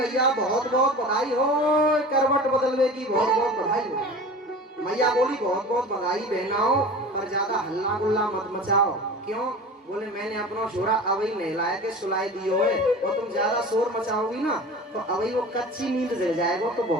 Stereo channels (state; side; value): normal; both; correlation 0.36